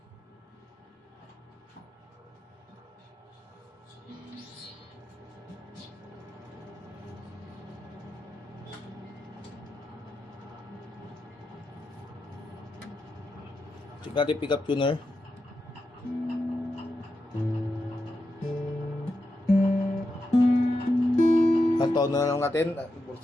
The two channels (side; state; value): both; normal; correlation 0.87